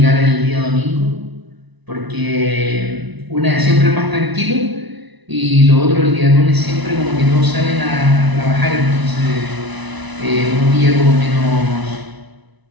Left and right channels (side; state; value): left; late; 1.0 ms